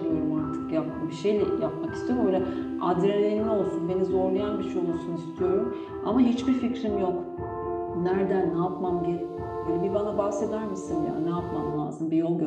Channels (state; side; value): identical; both; correlation 1.00